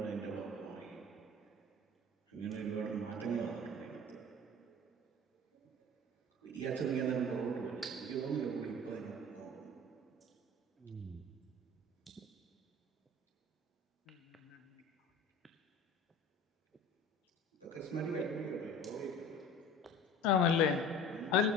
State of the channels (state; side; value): normal; both; correlation 0.41